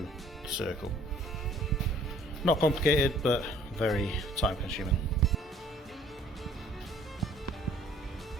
the circle. Not complicated, but very time consuming.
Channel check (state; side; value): normal; both; correlation 0.57